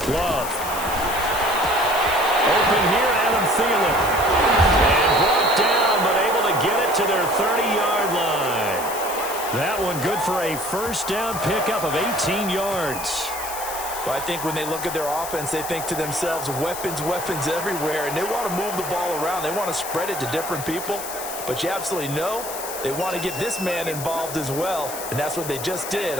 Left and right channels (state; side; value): noise; left; hiss, 9 dB below the sound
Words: Love. Open here, Adam Thielen. And brought down, but able to get it to their 30-yard line. That one good for a 1st down pickup of 18 yards. Well, I think when they look at their offense, they think to themselves, weapons, weapons everywhere, and they want to move the ball around. They want to spread it to different people. But you absolutely know they want to get this man involved as well, and that's what they just did